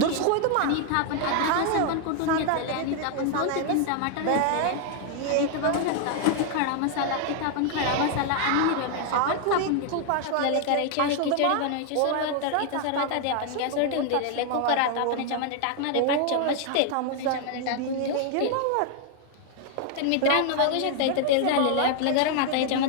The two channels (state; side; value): different; both; correlation 0.00